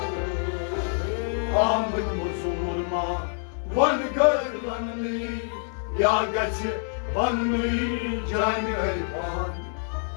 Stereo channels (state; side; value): silent; right; 61 dB below the other